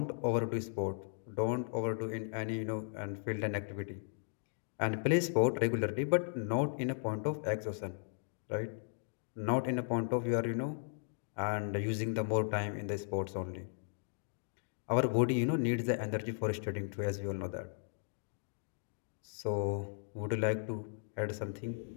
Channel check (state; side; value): silent; right; digital silence